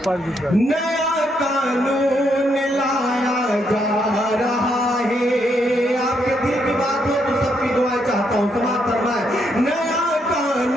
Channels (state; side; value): normal; both; correlation 0.76